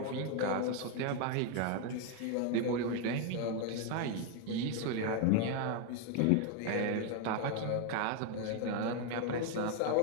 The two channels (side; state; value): both; different; correlation 0.01